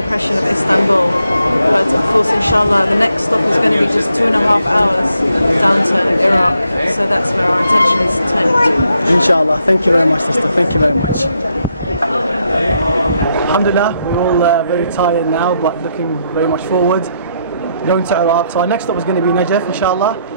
of Istanbul. But of course, inshallah, the next stop is going to be just 2.5 hours down to Iraq, so that's where our attention is turning to. Inshallah. Thank you very much, sister. Thank you very much. Alhamdulillah, we're all very tired now, but looking very much forward. Going to Iraq. So our next stop is going to be Najaf, inshallah.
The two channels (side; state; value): both; inverted; correlation -0.77